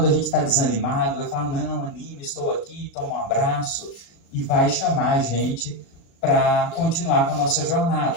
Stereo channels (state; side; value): late; right; 36 ms